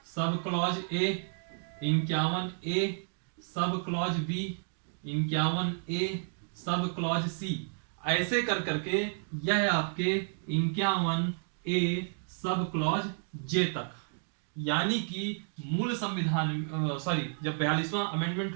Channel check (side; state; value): left; silent; digital silence